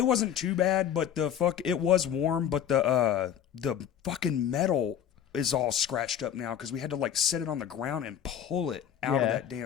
wasn't too bad, but it was warm, but the fucking metal is all scratched up now because we had to like set it on the ground and pull it out of that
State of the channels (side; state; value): right; quieter; 9.4 dB